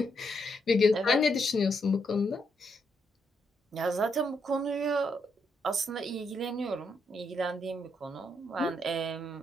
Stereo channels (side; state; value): both; normal; correlation 0.78